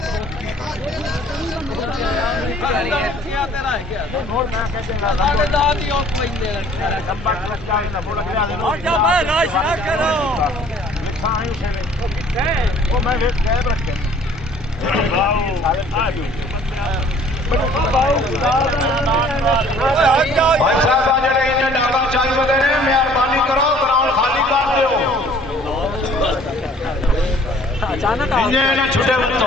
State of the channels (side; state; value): both; normal; correlation 0.54